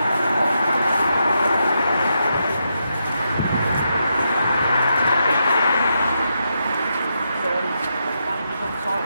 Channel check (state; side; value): inverted; both; correlation -0.83